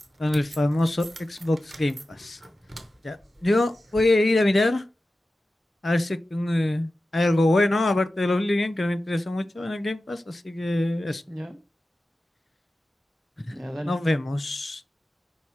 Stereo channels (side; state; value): both; normal; correlation 0.94